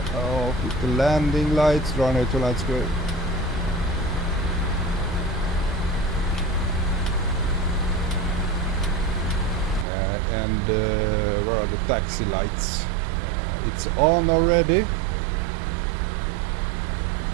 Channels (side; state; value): left; drops out; at 9.9 s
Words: the landing lights, runway 2 lights, go. And where are the taxi lights? It's on already.